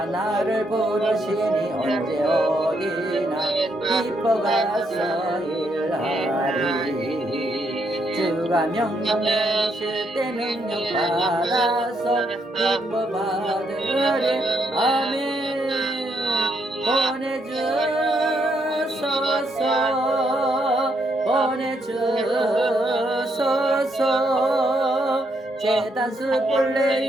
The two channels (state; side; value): normal; both; correlation 0.76